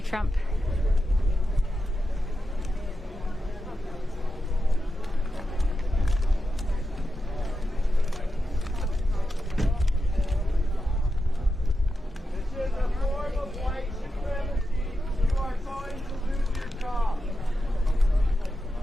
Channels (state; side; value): normal; both; correlation 0.89